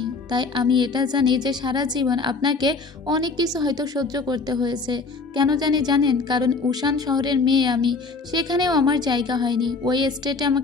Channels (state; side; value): quieter; right; 4.1 dB